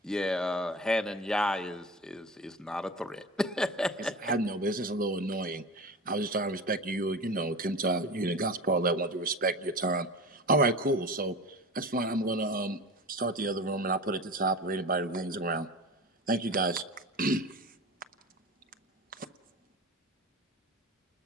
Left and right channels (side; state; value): both; normal; correlation 0.30